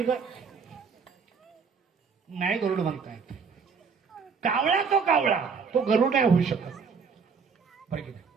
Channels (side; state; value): left; quieter; 5.7 dB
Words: का? नाही गरुड म्हणता येत. कावळा तो गरुड नाही होऊ शकत बरं की नाही.